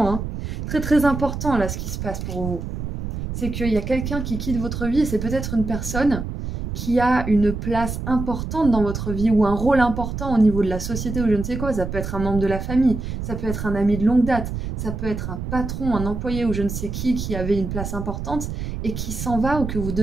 hein. Très très important là ce qui se passe pour vous. C'est qu'il y a quelqu'un qui quitte votre vie et c'est peut-être une personne qui a une place importante dans votre vie ou un rôle important au niveau de la société ou je ne sais quoi. Ça peut être un membre de la famille, ça peut être un ami de longue date, ça peut être un patron, un employé ou je ne sais qui avait une place importante et qui s'en va ou que vous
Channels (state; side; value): noise; right; rumble, 5 dB below the sound